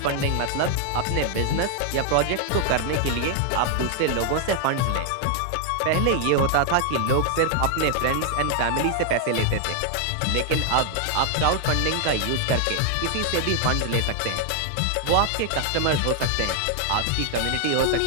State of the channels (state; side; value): different; both; correlation 0.00